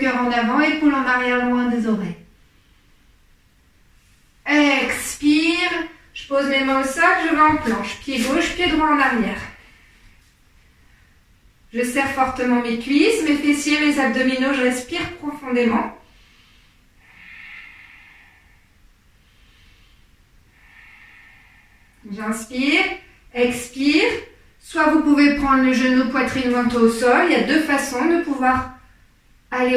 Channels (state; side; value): identical; both; correlation 1.00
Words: en avant, épaule en arrière loin des oreilles. Expire, je pose mes mains au sol, je vais en planche, pied gauche, pied droit en arrière. Je serre fortement mes cuisses, mes fessiers, mes abdominaux, je respire profondément. J'inspire, expire. Soit vous pouvez prendre le genou, poitrine, menton au sol. Il y a deux façons de pouvoir aller